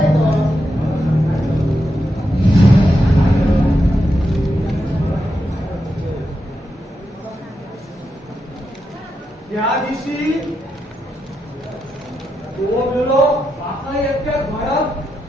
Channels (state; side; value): normal; both; correlation 0.85